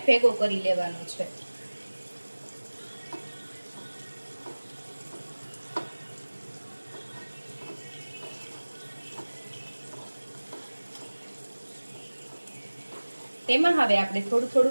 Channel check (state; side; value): inverted; both; correlation -1.00